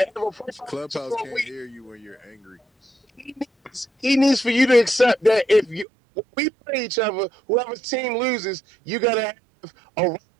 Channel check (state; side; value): drops out; left; at 5.9 s